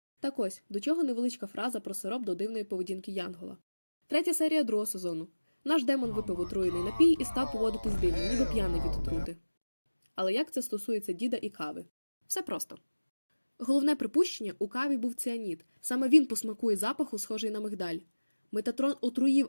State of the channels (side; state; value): both; inverted; correlation -1.00